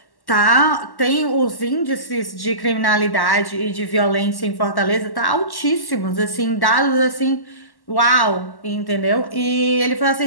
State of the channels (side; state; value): right; late; 1.1 ms